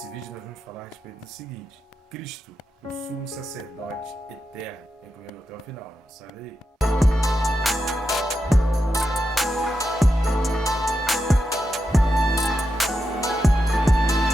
vídeo nós vamos falar a respeito do seguinte: Cristo, o sumo sacerdote eterno. Vem comigo até o final, não sai daí.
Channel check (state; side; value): normal; both; correlation 0.87